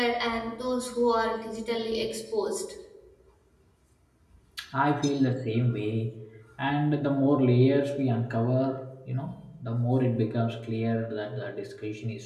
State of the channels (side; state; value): both; identical; correlation 1.00